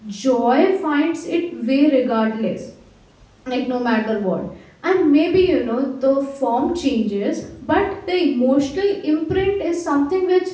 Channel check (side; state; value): both; identical; correlation 1.00